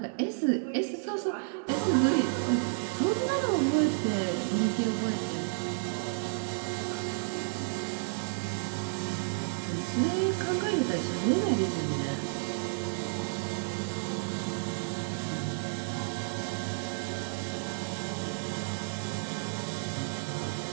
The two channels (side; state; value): left; silent; digital silence